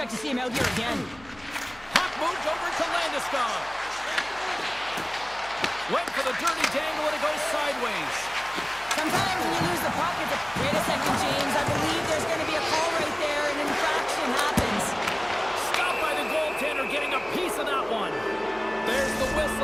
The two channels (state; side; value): noise; left; hum, 23 dB below the sound